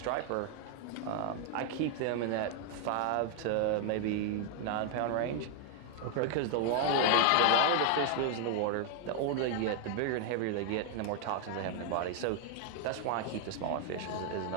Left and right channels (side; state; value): both; different; correlation 0.00